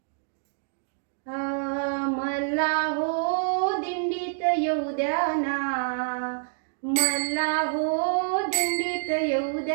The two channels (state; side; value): silent; left; digital silence